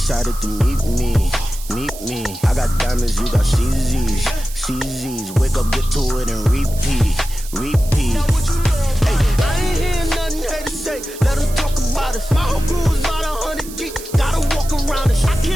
to meet me. Meet me. I got diamonds, you got CZs. CZs. Wake up, get to it and repeat. Repeat. Hey, I ain't hearing nothing haters say. Let them talk about us. My whole crew is about 100 deep. Gotta walk around it. I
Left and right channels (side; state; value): right; noise; hiss, 15 dB below the sound